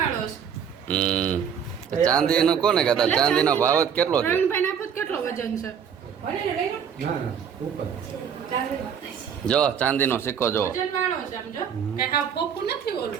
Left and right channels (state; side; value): quieter; left; 7.8 dB